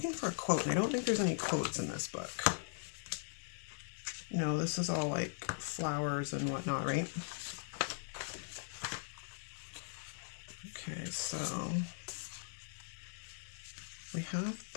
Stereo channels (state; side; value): silent; right; digital silence